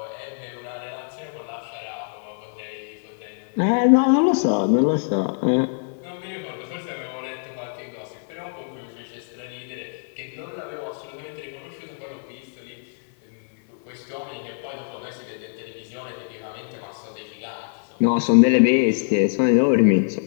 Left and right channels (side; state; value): right; silent; 56 dB below the other